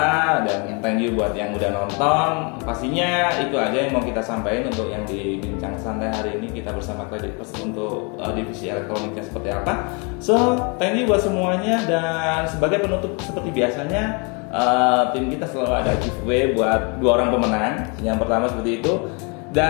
dan thank you buat yang udah nonton. Pastinya itu aja yang mau kita sampaikan untuk yang di bincang santai hari ini kita bersama Kredit Plus untuk divisi elektroniknya seperti apa. So thank you buat semuanya, dan sebagai penutup seperti biasanya tim kita selalu ada giveaway buat 2 orang pemenang. Yang pertama seperti itu.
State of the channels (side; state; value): right; quieter; 33.5 dB